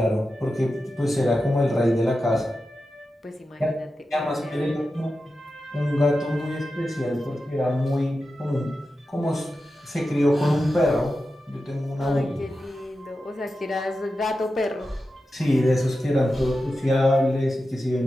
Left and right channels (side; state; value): both; normal; correlation 0.91